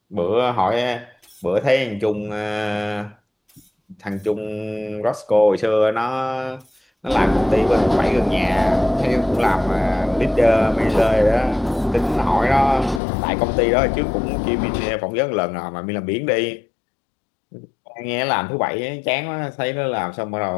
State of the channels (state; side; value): drops out; right; at 13.0 s